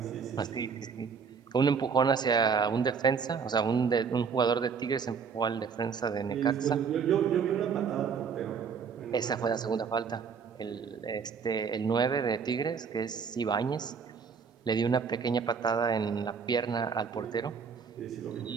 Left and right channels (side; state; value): left; quieter; 6.1 dB